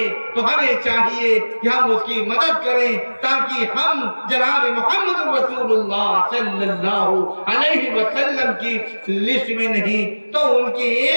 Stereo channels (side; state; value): both; inverted; correlation -1.00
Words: تو ہمیں چاہیے کہ ہم اس کی مدد کریں تاکہ ہم جناب محمد رسول اللہ صلی اللہ علیہ وسلم کی لسٹ میں نہیں تو ان کی